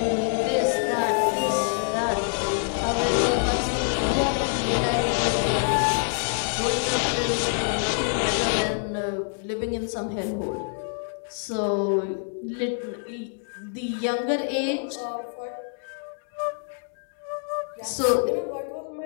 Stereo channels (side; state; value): right; silent; digital silence